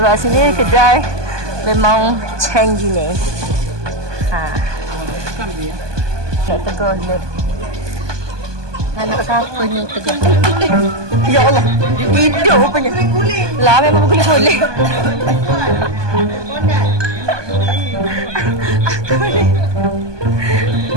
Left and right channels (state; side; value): late; left; 1.2 ms